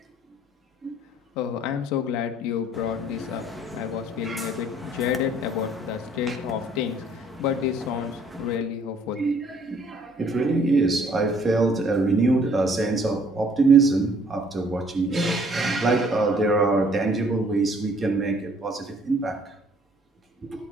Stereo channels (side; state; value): both; normal; correlation 0.59